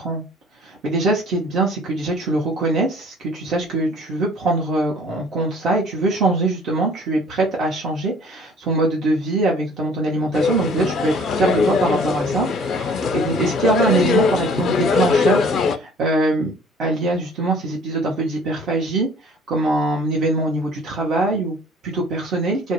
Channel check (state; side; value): normal; both; correlation 0.52